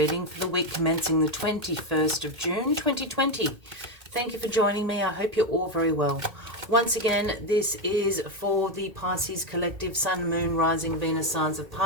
for the week commencing the 21st of June 2020. Thank you for joining me. I hope you're all very well. Once again, this is for the Pisces Collective Sun, Moon, Rising, Venus signs of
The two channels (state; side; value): late; left; 1.8 ms